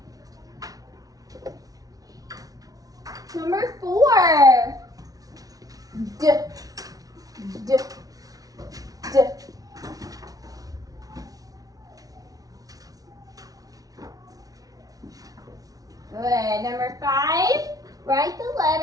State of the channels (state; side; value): late; left; 0.18 ms